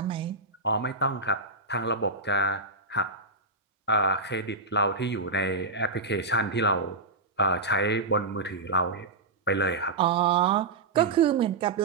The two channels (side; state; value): left; quieter; 3.4 dB